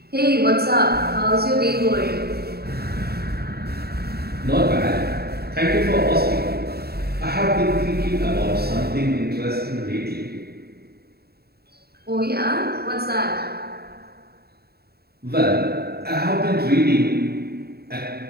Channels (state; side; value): late; left; 0.46 ms